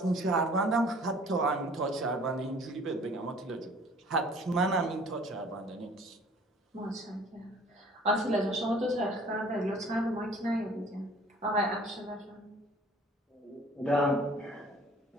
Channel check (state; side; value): normal; both; correlation 0.52